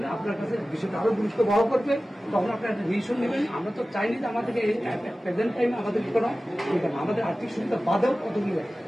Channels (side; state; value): both; normal; correlation 0.96